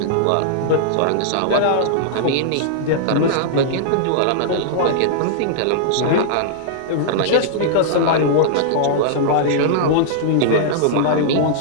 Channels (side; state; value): both; different; correlation -0.01